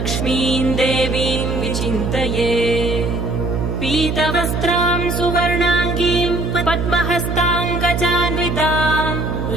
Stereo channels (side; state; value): right; noise; hum, 1 dB below the sound